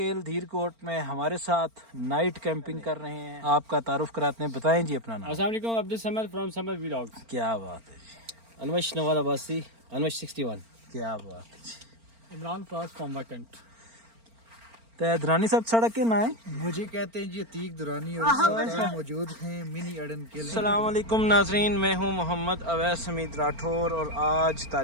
धीरकोट में हमारे साथ नाइट कैंपिंग कर रहे हैं। आपका तारुफ कराते हैं, बताएं जी अपना नाम। अस्सलाम वालेकुम, अब्दुल समद फ्रॉम समद व्लॉग्स। क्या बात है जी, अनवश नवाज अब्बासी, अनवश 61। क्या बात है जी। Imran Faraz from vacant. तो दुरानी साहब सड़क के ना है, मुझे कहते हैं जी अतीक दुरानी और साथ मौजूद हैं मिनी अड़ंकेल। अस्सलाम वालेकुम नाजरीन, मैं हूं मोहम्मद अवैस हमीद राठौर और आज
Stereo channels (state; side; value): late; left; 4.4 ms